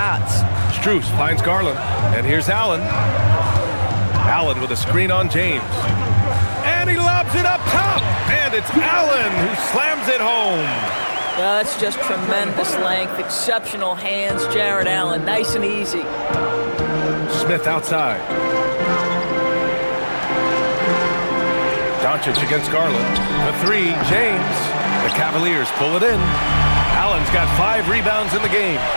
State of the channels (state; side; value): inverted; both; correlation -1.00